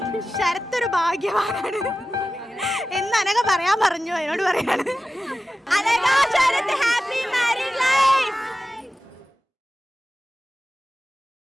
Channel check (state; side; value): normal; both; correlation 0.94